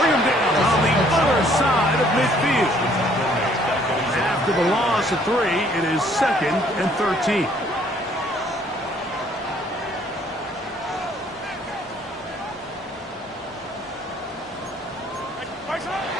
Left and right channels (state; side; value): normal; both; correlation 0.62